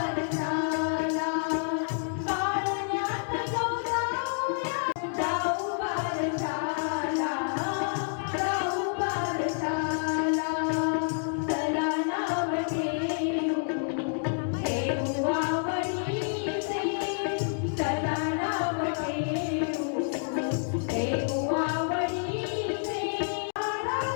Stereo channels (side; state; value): right; silent; digital silence